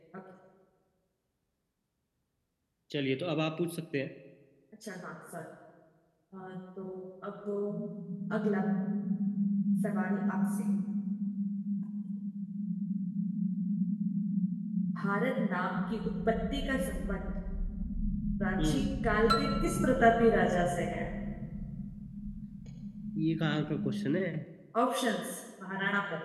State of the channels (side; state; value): both; identical; correlation 1.00